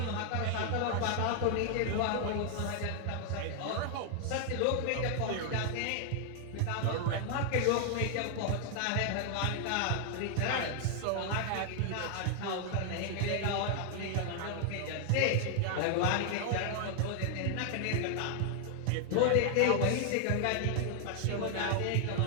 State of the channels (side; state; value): both; different; correlation 0.00